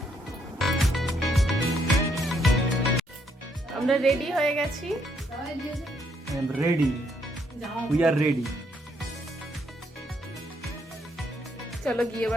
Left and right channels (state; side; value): normal; both; correlation 0.72